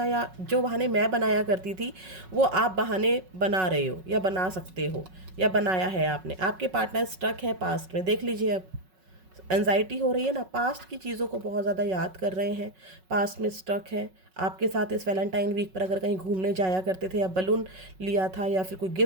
जो बहाने मैं बनाया करती थी, वो आप बहाने बना रहे हो या बना सकते हो या बनाया है आपने। आपके पार्टनर स्ट्रक है पास्ट में, देख लीजिए। अब एंजाइटी हो रही है ना, पास्ट की चीज़ों को बहुत ज़्यादा याद कर रहे हैं, पास्ट में स्टक है। आपके साथ इस वैलेंटाइन वीक पर अगर कहीं घूमने जाया करते थे, या बलून लिया था, या फिर कोई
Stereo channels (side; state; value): left; late; 5.4 ms